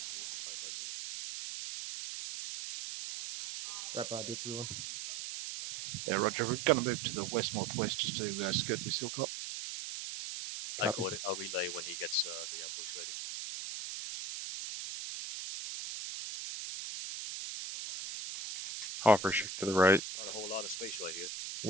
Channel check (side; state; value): right; noise; hiss, 6 dB below the sound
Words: Yeah, Roger. We're going to move to the west-northwest just to skirt this hilltop. I got it. I'll relay when he gets the ambush ready. Hopper shift to the right. Not a whole lot of space right here.